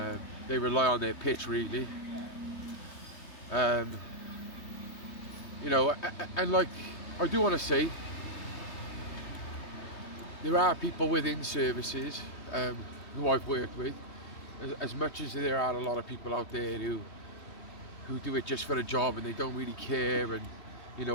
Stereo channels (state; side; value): late; right; 3.2 ms